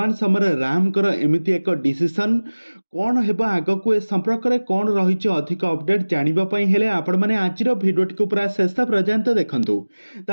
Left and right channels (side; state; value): both; inverted; correlation -1.00